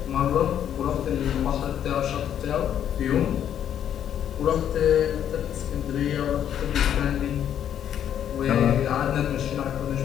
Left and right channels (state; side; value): quieter; right; 9.8 dB